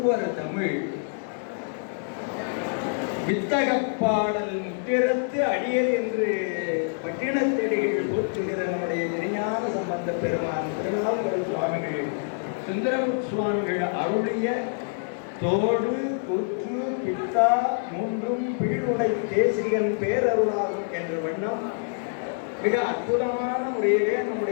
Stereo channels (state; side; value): silent; right; 61 dB below the other